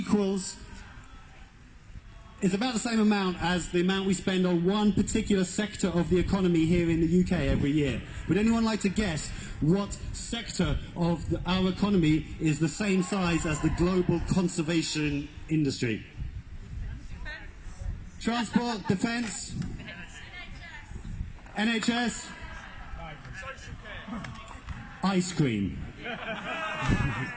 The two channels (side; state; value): both; identical; correlation 1.00